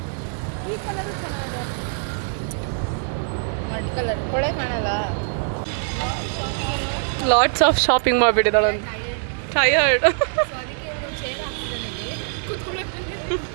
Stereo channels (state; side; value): silent; left; 63 dB below the other